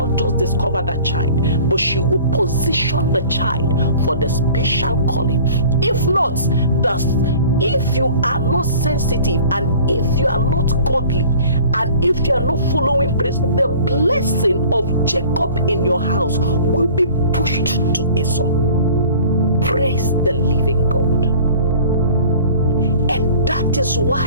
just discover that child, but she will position the child for the special calling. If not, if you are not sensitive, and if you are not godly, and if you are not following praise, the blessing of Jacob in your house will be pushed to Esau. Praise the living God. And that is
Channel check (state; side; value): inverted; both; correlation -0.47